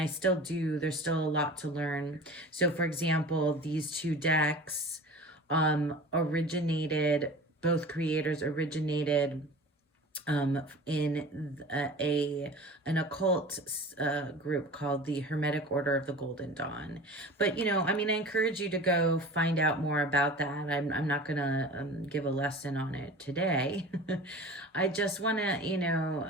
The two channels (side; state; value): both; normal; correlation 0.38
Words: still do. There's still a lot to learn. So, for example, these two decks both creators originated in an occult group called the Hermetic Order of the Golden Dawn. But, you know, I mean, I encourage you to go find out more about that. I'm not going to give a lesson on it today. I just want to, you